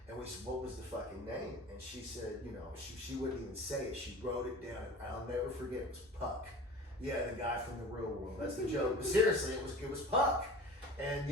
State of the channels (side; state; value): both; normal; correlation 0.39